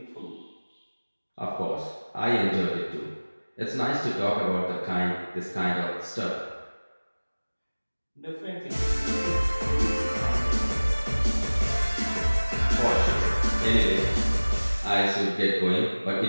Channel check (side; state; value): both; inverted; correlation -1.00